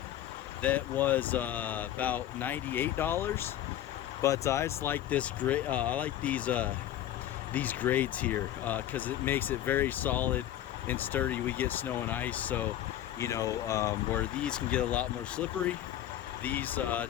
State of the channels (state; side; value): quieter; right; 12.2 dB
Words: that was about $98, but I just like this great. I like these grades here because it makes it very solid and sturdy. We get snow and ice, so you know, where these can get a lot more slippery, these